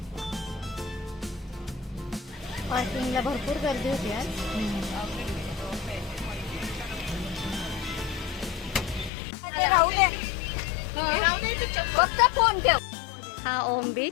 पार्किंगला भरपूर गर्दी होती आज. फक्त फोन ठेव. हा ओम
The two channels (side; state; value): right; drops out; at 9.1 s